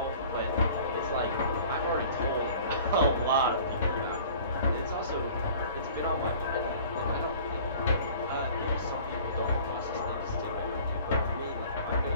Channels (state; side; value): inverted; both; correlation -0.46